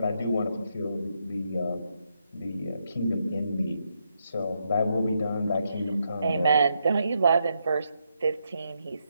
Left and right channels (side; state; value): both; inverted; correlation -0.80